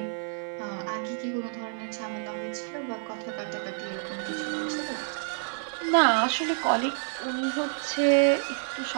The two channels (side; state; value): left; silent; digital silence